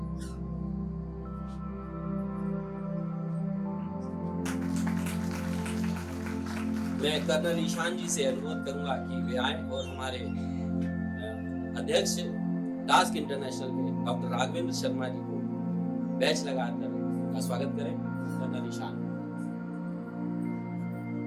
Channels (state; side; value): identical; both; correlation 1.00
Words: मैं कर्नल ईशान जी से अनुरोध करूंगा कि वे आए और हमारे अध्यक्ष टास्क इंटरनेशनल के डॉक्टर राघवेंद्र शर्मा जी को बैच लगाकर उनका स्वागत करें। कर्नल ईशान।